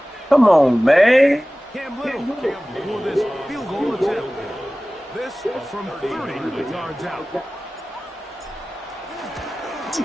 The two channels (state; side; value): normal; both; correlation 0.97